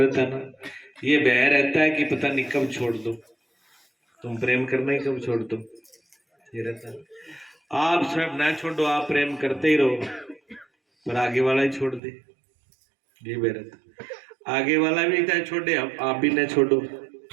है ना। ये भय रहता है कि पता नहीं कब छोड़ दो, तुम प्रेम करना ही कब छोड़ दो, ये रहता है। आप सब ना छोड़ो, आप प्रेम करते ही रहो, पर आगे वाला ही छोड़ दे, ये भय रहता। आगे वाला भी चाहे छोड़े, आप भी ना छोड़ो,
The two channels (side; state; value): left; drops out; at 12.0 s